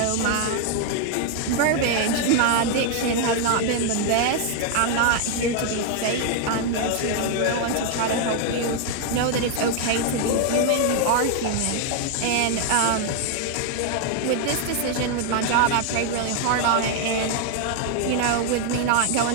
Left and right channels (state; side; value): different; both; correlation 0.00